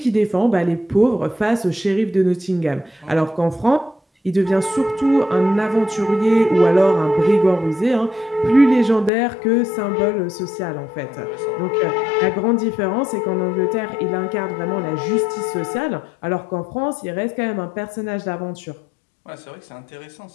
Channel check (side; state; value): right; drops out; at 9.1 s